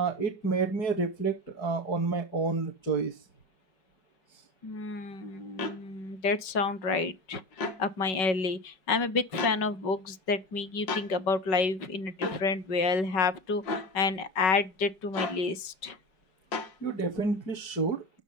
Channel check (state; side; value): late; right; 5.3 ms